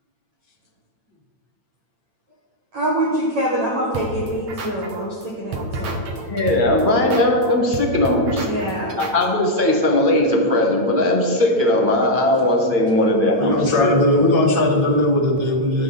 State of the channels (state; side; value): late; left; 8.8 ms